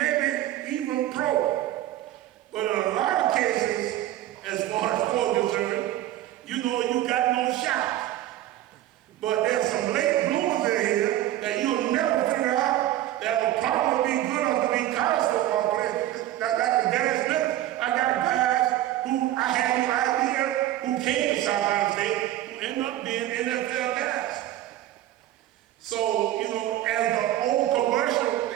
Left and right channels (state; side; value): quieter; left; 13.7 dB